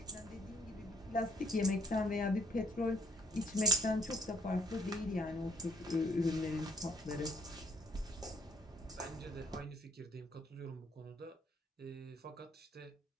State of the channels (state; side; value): normal; both; correlation 0.60